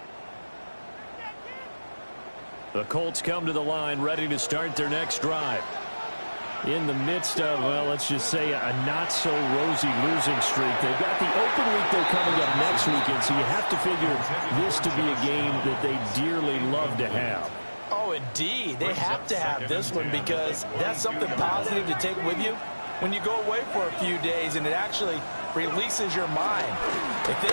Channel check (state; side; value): inverted; both; correlation -1.00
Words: The Colts come to the line ready to start their next drive. In the midst of, well, let's just say a not-so-rosy losing streak. They've got the open week they're coming up next weekend, so you have to figure this to be a game that they dearly love to have. Oh, indeed. They have to have this one because that's something positive to take with you when you go away for a few days, and it actually releases your mind. If they